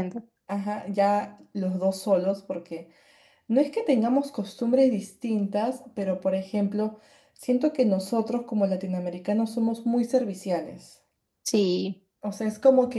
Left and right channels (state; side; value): identical; both; correlation 1.00